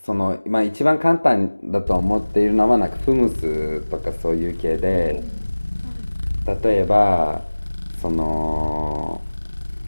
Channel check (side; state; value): both; inverted; correlation -1.00